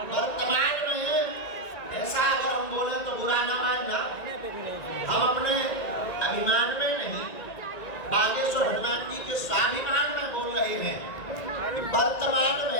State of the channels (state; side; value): late; right; 1.9 ms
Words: वर्तमान में ऐसा अगर हम बोले तो बुरा ना मानना, हम अपने अभिमान में नहीं, बागेश्वर हनुमान जी के स्वाभिमान में बोल रहे हैं। वर्तमान